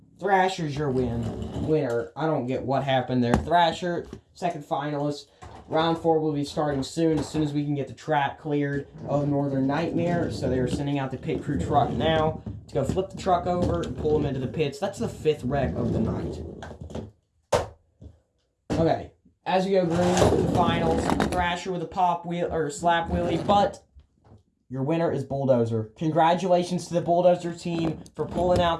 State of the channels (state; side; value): identical; both; correlation 1.00